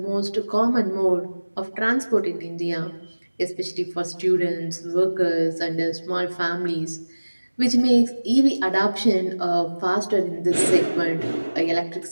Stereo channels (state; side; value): inverted; both; correlation -1.00